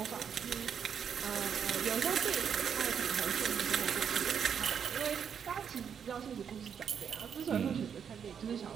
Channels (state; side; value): quieter; left; 7.6 dB